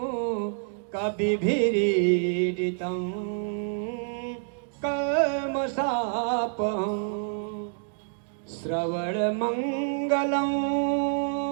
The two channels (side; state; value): left; silent; digital silence